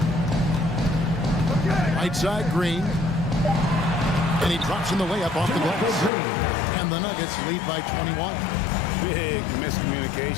Right side, Green. And he drops in the layup off the glass. And the Nuggets lead by 21. Big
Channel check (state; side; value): drops out; right; at 6.1 s